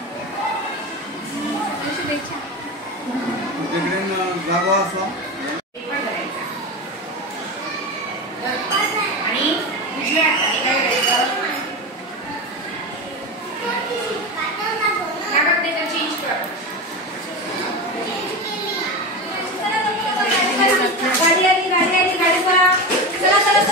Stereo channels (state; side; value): normal; both; correlation 0.22